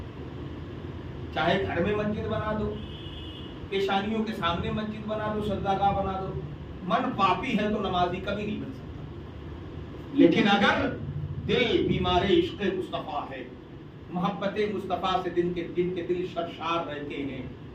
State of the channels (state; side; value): identical; both; correlation 1.00